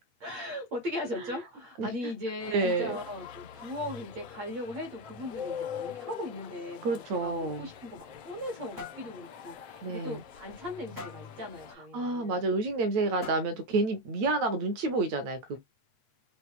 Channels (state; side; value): late; left; 8.5 ms